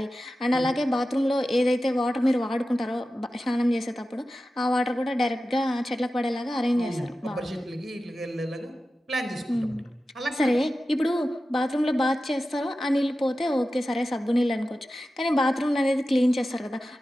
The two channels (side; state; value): both; normal; correlation 0.93